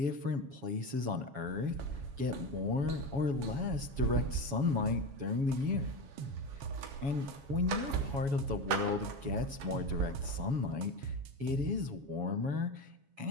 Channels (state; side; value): late; left; 7.1 ms